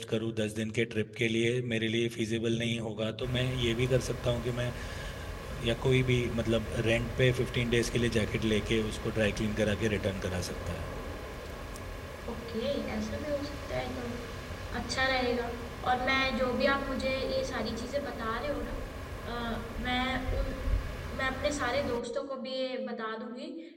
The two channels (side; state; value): both; identical; correlation 1.00